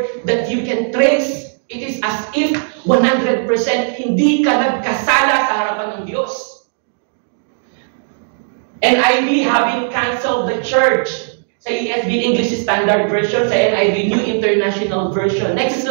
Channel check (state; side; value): silent; left; digital silence